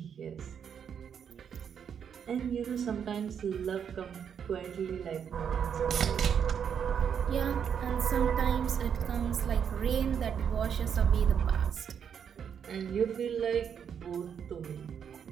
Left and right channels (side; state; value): left; quieter; 7.8 dB